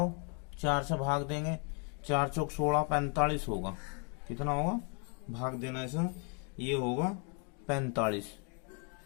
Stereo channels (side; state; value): right; quieter; 37.7 dB